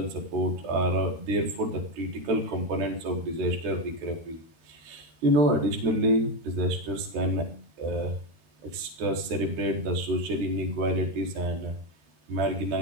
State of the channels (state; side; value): late; left; 13 ms